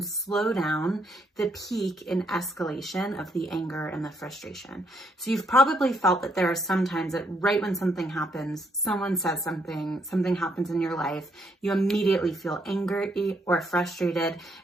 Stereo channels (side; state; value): both; normal; correlation 0.73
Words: slow down the peak in escalation of the anger and the frustration. So you've probably felt that there are some times that right when something happens, someone says something happens in your life, you immediately feel angry or frustrated,